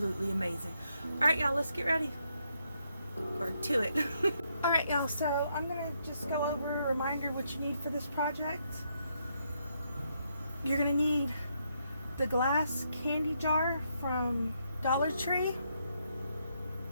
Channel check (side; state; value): both; inverted; correlation -0.77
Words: amazing. Alright y'all, let's get ready. Or to it. Alright y'all, so I'm going to just go over a reminder what you need for this project. You're going to need the glass candy jar from Dollar Tree.